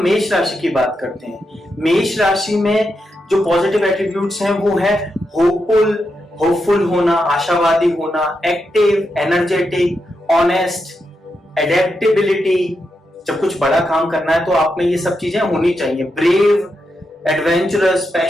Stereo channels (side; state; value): both; normal; correlation 0.85